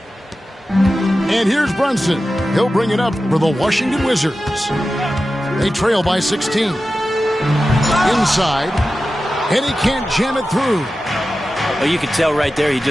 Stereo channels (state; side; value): normal; both; correlation 0.93